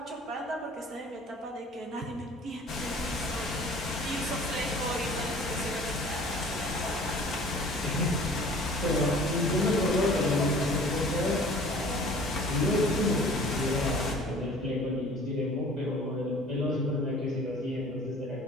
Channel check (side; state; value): both; normal; correlation 0.48